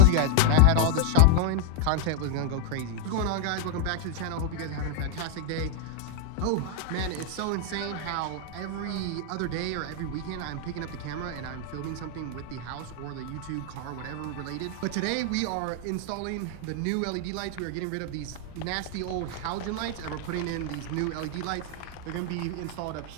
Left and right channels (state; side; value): different; both; correlation 0.00